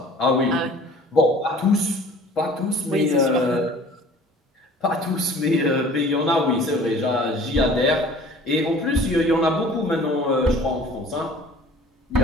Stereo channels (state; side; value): normal; both; correlation 0.48